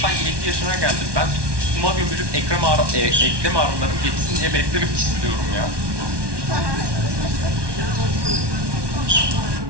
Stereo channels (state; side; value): late; left; 1.2 ms